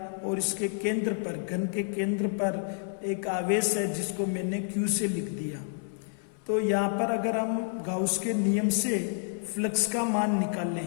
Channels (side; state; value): right; silent; 58 dB below the other